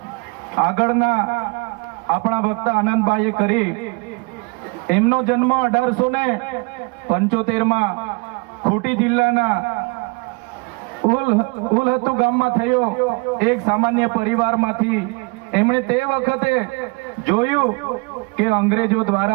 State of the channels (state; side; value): quieter; left; 28.8 dB